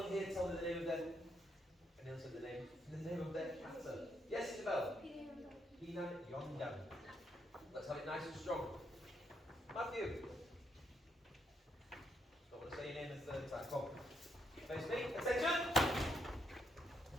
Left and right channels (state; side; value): normal; both; correlation 0.76